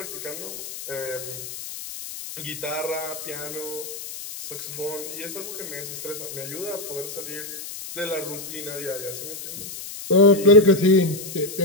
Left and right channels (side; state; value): left; noise; hiss, 10 dB below the sound